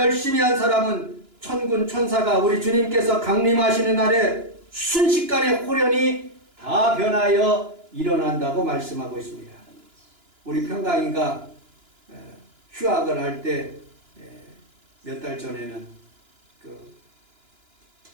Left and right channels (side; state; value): left; late; 2.9 ms